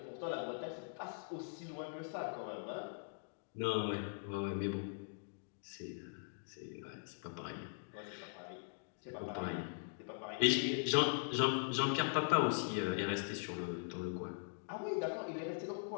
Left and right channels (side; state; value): right; silent; digital silence